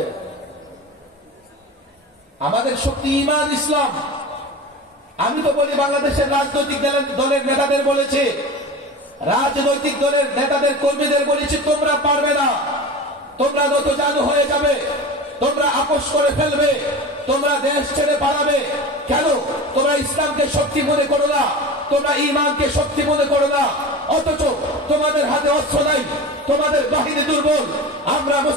আমাদের শক্তি ঈমান, ইসলাম। আমি তো বলি, বাংলাদেশের রাজনৈতিক দলের নেতাদের বলেছে, রাজনৈতিক দলের নেতাদের কর্মীদের বলেছি, তোমরা পারবে না, তোমরা নতজানু হয়ে যাবে, তোমরা আপোষ করে ফেলবে, তোমরা দেশ ছেড়ে পালাবে। কেন? তোমরা ইসলামকে শক্তি মনে করো না, তোমরা ঈমানকে শক্তি মনে করো না, অথচ তোমাদের হাতে অস্ত্র নাই, তোমাদের বাহিনী দুর্বল। আমরা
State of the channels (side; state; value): both; normal; correlation 0.31